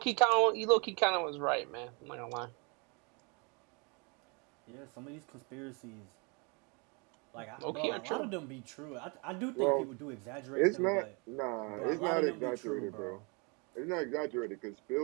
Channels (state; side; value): quieter; left; 32.0 dB